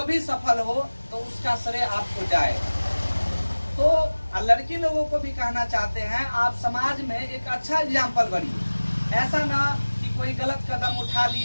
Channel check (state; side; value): inverted; both; correlation -1.00